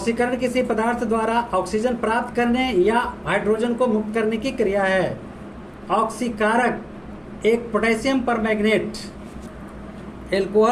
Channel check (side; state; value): both; identical; correlation 1.00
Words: किसी पदार्थ द्वारा ऑक्सीजन प्राप्त करने या हाइड्रोजन को मुक्त करने की क्रिया है। ऑक्सीकारक एक पोटेशियम परमैंगनेट।